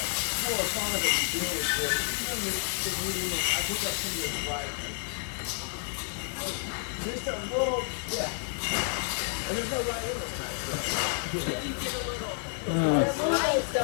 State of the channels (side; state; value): right; silent; 58 dB below the other